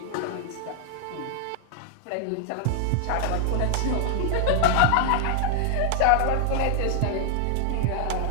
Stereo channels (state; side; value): different; both; correlation 0.00